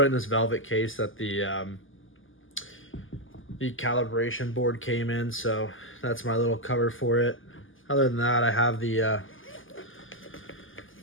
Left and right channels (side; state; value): right; late; 0.58 ms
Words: it in this velvet case that the calibration board came in, so that's my little cover for it. Other than that, I have the